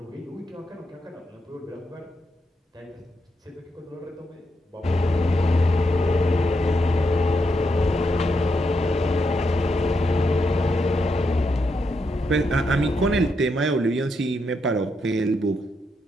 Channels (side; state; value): both; normal; correlation 0.82